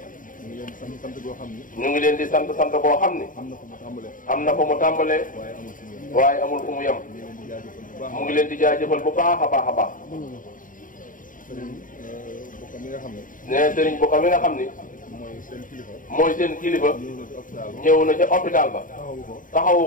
ñu ngi leen di sant sant boo xam ni am na fu mu tàmbalee waaye amul fu mu yem. mu ngi leen di jaajëfal bu baax a baax a baax. nee Sëriñ Bokka mi nga xam ni mooy seen kilifa ñëw na ca hôpital ba taxawu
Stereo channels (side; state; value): right; late; 0.39 ms